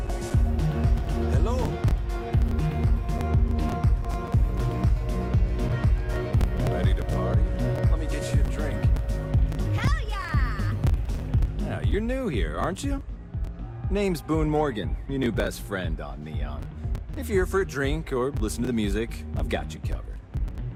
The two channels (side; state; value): both; identical; correlation 1.00